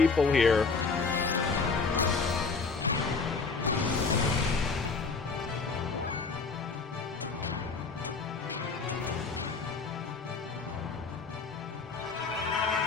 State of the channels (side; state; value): right; quieter; 4.6 dB